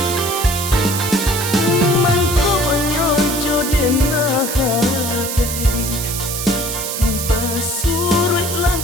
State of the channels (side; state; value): right; noise; hiss, 4 dB below the sound